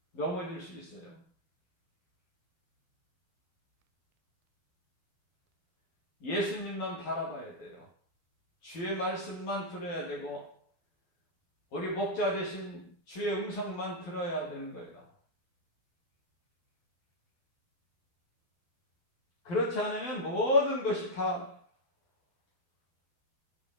넘어질 수 있어요. 예수님만 바라봐야 돼요. 주의 말씀만 들어야 되고 우리 목자 되신 주의 음성만 들어야 되는 거예요. 그렇지 않으면 모든 것이 다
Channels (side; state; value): right; late; 12 ms